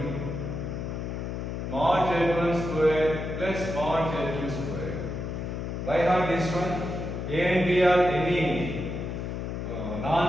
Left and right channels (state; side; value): noise; left; hum, 4 dB below the sound